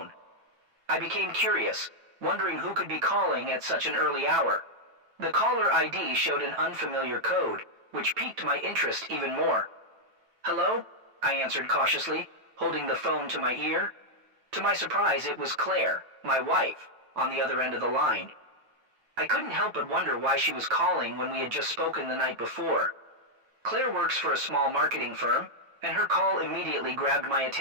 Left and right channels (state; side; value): late; left; 9.0 ms